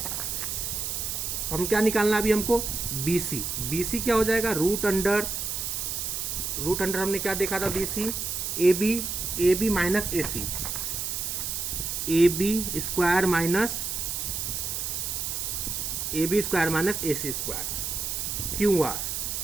हम क्या निकालना अभी हमको? BC क्या हो जाएगा? रूट अंडर हमने क्या देखा था? BC AB minus AC, AB square minus AC square.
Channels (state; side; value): noise; right; hiss, 3 dB below the sound